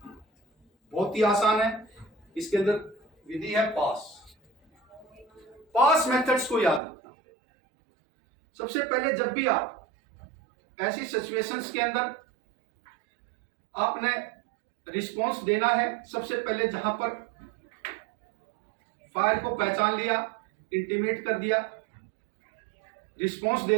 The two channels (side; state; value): left; drops out; at 6.8 s